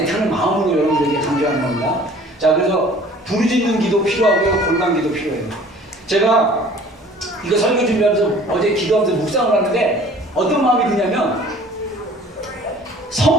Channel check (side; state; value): both; normal; correlation 0.50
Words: 마음으로 여러분들에게 강조하는 겁니다. 자, 그래서 부르짖는 기도 필요하고요, 골방 기도 필요해요. 제가 이거 설교 준비하면서 어제 기도하면서 묵상을 하는데 어떤 마음이 드냐면